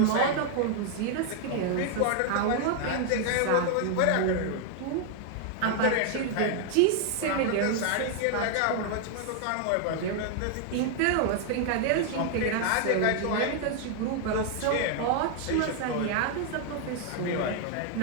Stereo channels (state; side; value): different; both; correlation 0.00